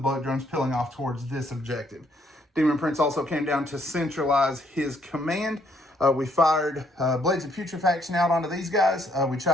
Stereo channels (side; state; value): both; normal; correlation 0.68